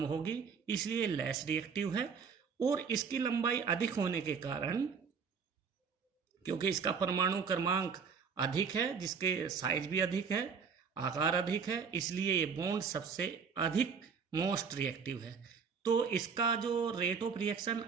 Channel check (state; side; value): quieter; left; 6.1 dB